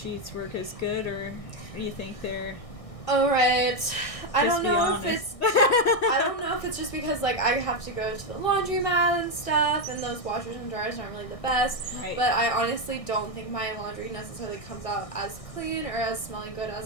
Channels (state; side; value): late; right; 1.6 ms